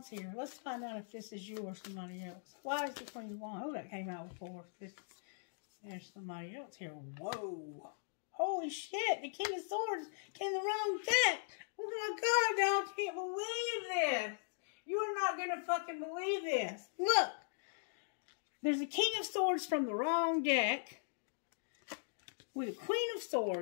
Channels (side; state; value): right; silent; digital silence